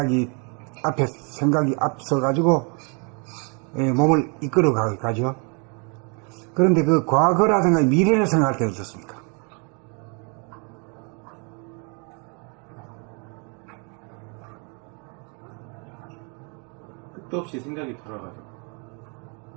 앞서가지고 몸을 이끌어 가죠. 그런데 그 과거라든가 미래를 생각할 때는 어떻습니까? 끝도 없이 생각이 돌아가죠.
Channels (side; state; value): left; quieter; 35.6 dB